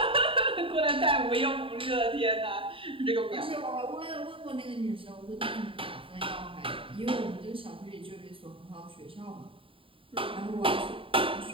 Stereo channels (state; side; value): late; left; 0.26 ms